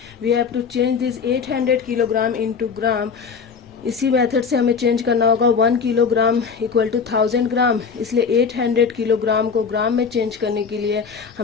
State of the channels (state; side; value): quieter; right; 5.8 dB